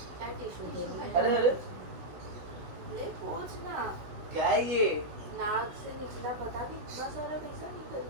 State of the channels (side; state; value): left; late; 16 ms